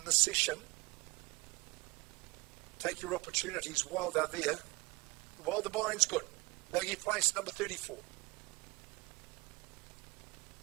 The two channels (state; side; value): quieter; left; 24.1 dB